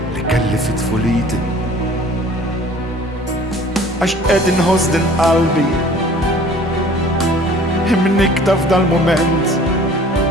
li kelli fit-tfuliti għax qed inħoss din qalbi imnikta f'dal-mument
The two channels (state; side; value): normal; both; correlation 0.50